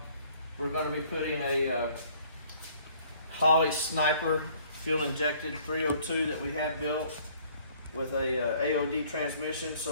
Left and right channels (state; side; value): inverted; both; correlation -0.58